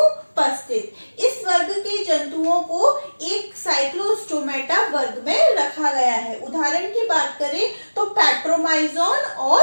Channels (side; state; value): both; inverted; correlation -1.00